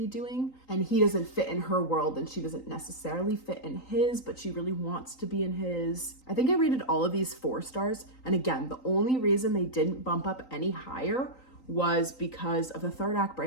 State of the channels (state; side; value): late; right; 3.9 ms